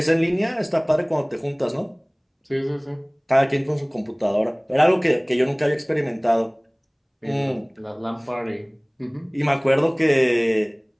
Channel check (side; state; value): both; identical; correlation 1.00